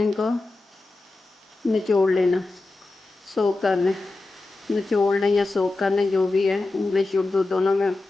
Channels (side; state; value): right; quieter; 3.2 dB